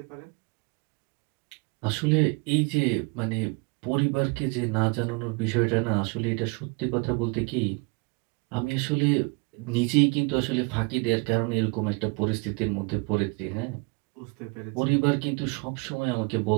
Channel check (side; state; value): left; quieter; 31.7 dB